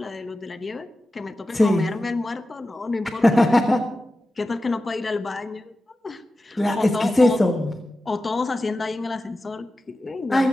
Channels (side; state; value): both; normal; correlation 0.93